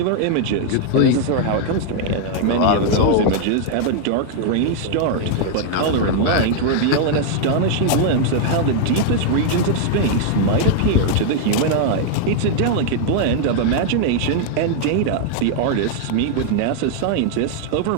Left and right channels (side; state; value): both; different; correlation 0.00